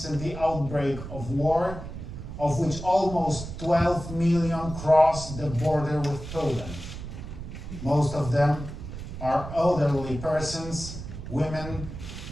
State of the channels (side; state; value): right; noise; rumble, 10 dB below the sound